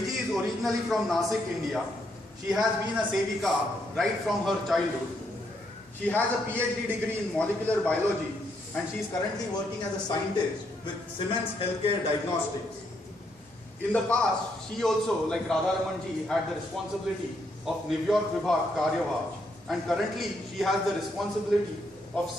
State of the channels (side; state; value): both; normal; correlation 0.75